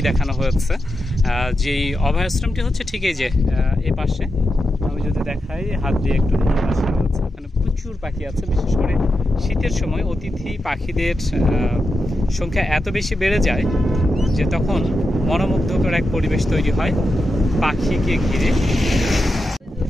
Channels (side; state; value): both; normal; correlation 0.88